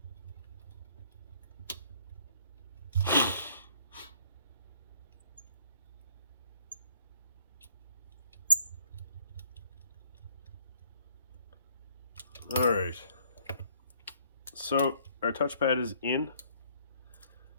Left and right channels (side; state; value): both; inverted; correlation -0.62